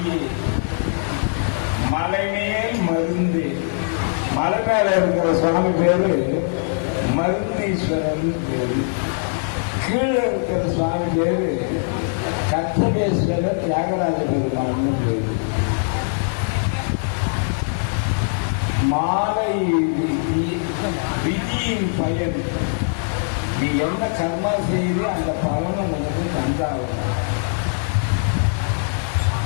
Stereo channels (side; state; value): right; silent; 58 dB below the other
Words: மலை மேல் மருந்து. மலை மேல இருக்கிற சுவாமி பேரு மருந்தீஸ்வரன் பேரு. கீழே இருக்கிற சுவாமி பேரு கத்தகேஸ்வரர் தியாகராஜ பெருமான் பேரு. மாலை விதியின் பயன். நீ என்ன கர்மா செய்து அந்த பலனை உனக்கு தந்தாகும்.